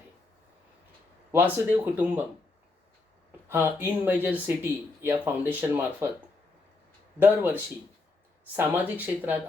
वासुदेव कुटुंबम हा इन मेजर सिटी या फाउंडेशन मार्फत दरवर्षी सामाजिक क्षेत्रात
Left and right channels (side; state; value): right; quieter; 3.5 dB